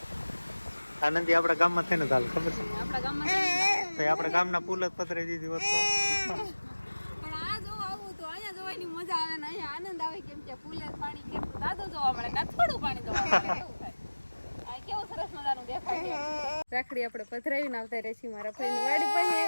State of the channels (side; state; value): both; inverted; correlation -1.00